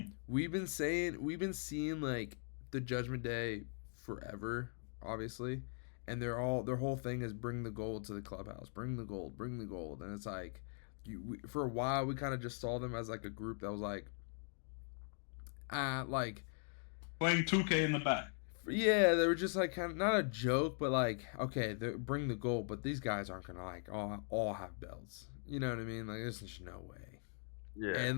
We've been seeing like the Judgment Day forever, obviously, and their whole thing is bring the gold to the clubhouse, bring the gold, and it's like for a while we kind of just saw them as like a group that was like playing 2K in the back. Yeah, they were just like kind of not a joke, but like okay, bring the gold, but these guys aren't gonna like all have belts. You know what I mean? Like there's just no way. Yeah. And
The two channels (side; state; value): right; silent; 51 dB below the other